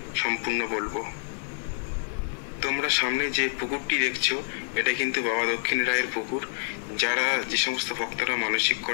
সম্পূর্ণ বলবো। তোমরা সামনে যে পুকুরটি দেখছো এটা কিন্তু বাবা দক্ষিণ রায়ের পুকুর। যারা যে সমস্ত ভক্তরা মানসিক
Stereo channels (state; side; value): silent; right; 55 dB below the other